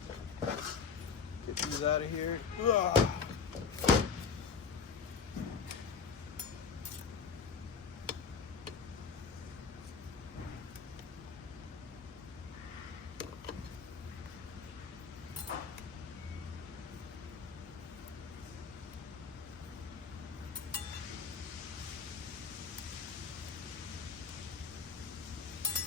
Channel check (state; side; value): quieter; right; 5.8 dB